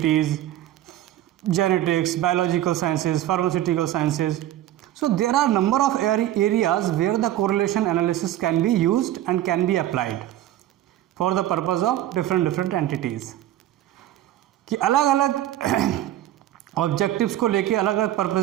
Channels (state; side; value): quieter; left; 13.1 dB